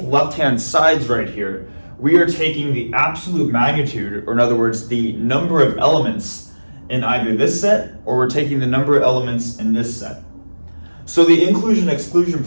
left-hand sides right here, we are taking the absolute magnitude, or in other words, the number of elements in either this set, or we're taking the number of elements in this set. So the inclusion-exclusion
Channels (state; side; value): inverted; both; correlation -1.00